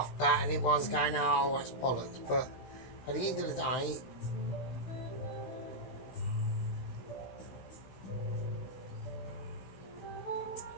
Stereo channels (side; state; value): right; late; 16 ms